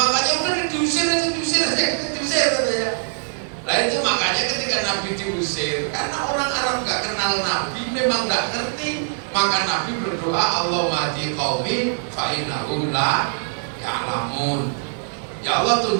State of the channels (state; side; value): silent; left; digital silence